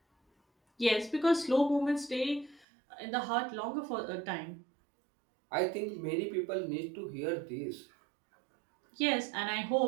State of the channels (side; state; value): left; drops out; at 2.7 s